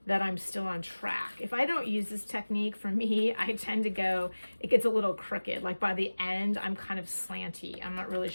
that I'm still on track. If I don't use this technique, for me, I tend to go, it gets a little crooked. Like by the end, I'm kind of slanty. I'm not really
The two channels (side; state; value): both; inverted; correlation -1.00